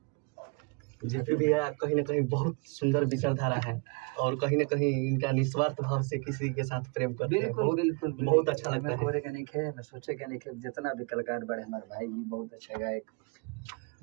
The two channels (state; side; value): quieter; left; 31.7 dB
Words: जेपी भैया कहीं ना कहीं बहुत सुंदर विचारधारा है और कहीं ना कहीं इनका निस्वार्थ भाव से किसी के साथ प्रेम करते हैं। बिल्कुल बिल्कुल बहुत अच्छा लगता है। कोरे के नहीं खे, मैं सोचे के नहीं खे, जितना भी कलाकार बड़े हमारे भाई भी बहुत अच्छा गायक